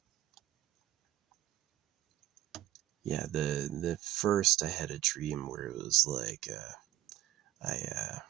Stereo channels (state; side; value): quieter; left; 14.5 dB